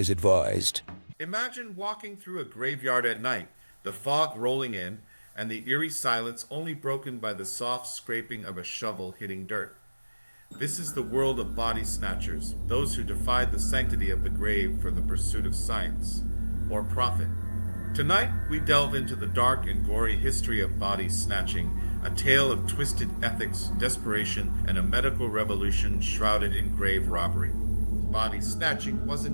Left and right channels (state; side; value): inverted; both; correlation -1.00